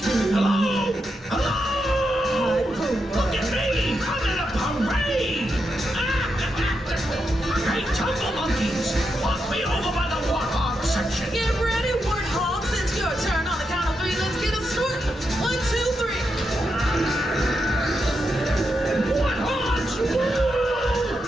Hello? Hello? Look at me! I'm in a parade! Hey, Jungle Monkeys! Walk me over by the warthog section! Get ready, warthogs. It's your turn. On the count of 3, let's get it started. 1, 2, 3. Warthogs!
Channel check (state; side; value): normal; both; correlation 0.85